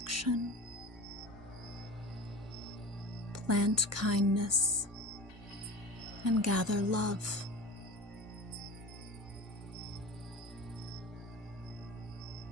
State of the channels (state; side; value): normal; both; correlation 0.34